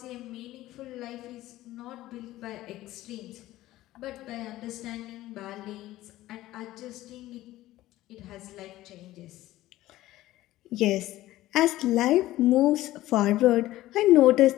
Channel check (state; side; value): quieter; right; 15.9 dB